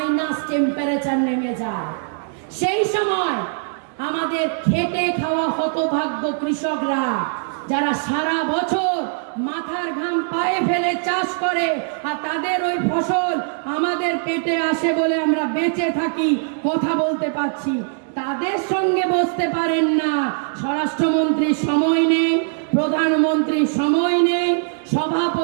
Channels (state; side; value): silent; left; digital silence